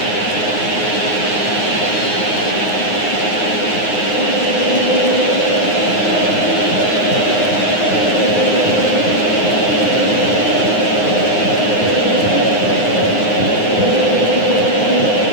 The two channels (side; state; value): right; late; 9.6 ms